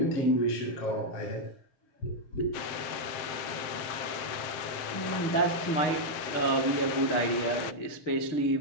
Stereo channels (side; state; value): right; late; 7.5 ms